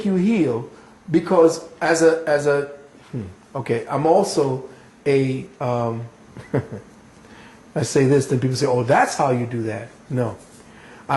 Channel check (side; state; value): both; identical; correlation 1.00